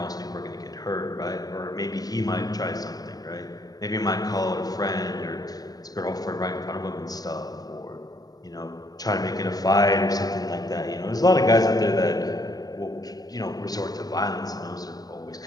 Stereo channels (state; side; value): late; right; 0.19 ms